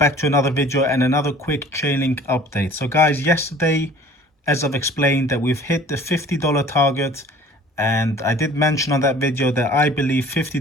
to another video and another quick Chainlink update. So guys, yesterday, as I've explained, that we've hit the $50 target, and I did mention on that video that I believe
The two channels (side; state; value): both; normal; correlation 0.49